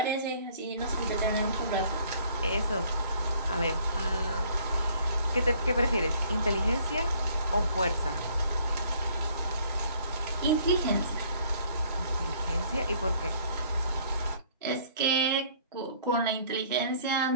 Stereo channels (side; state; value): both; inverted; correlation -0.59